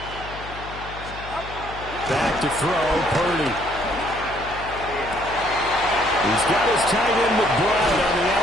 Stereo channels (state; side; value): noise; left; hum, 14 dB below the sound